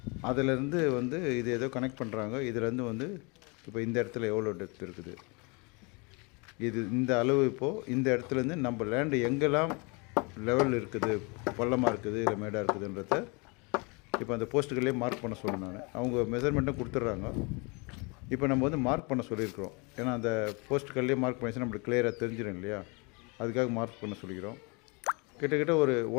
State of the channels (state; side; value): quieter; right; 30.2 dB